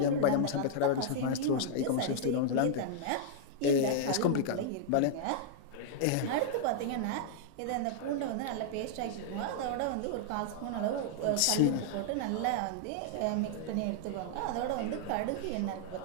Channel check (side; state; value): both; different; correlation -0.01